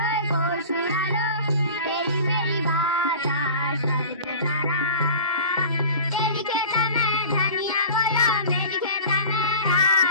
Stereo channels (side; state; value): both; inverted; correlation -0.39